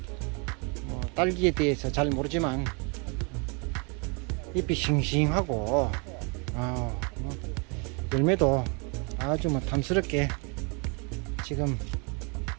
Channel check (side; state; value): left; quieter; 33.5 dB